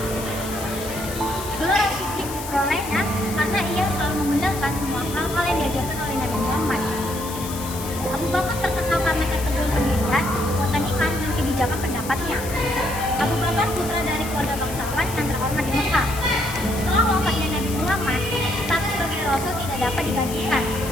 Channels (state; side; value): noise; left; hiss, 11 dB below the sound